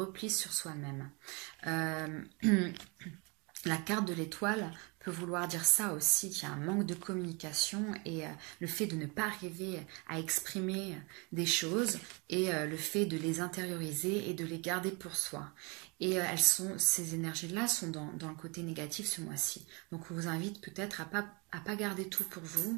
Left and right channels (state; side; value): quieter; left; 30.3 dB